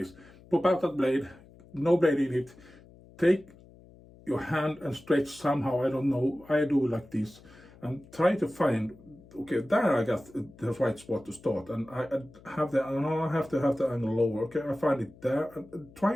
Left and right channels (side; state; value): left; noise; hum, 23 dB below the sound